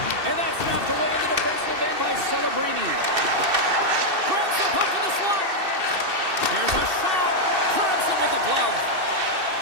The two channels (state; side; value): late; left; 2.7 ms